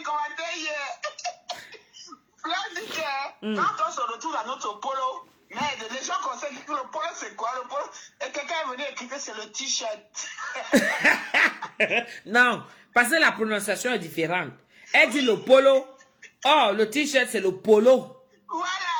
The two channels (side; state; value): both; identical; correlation 1.00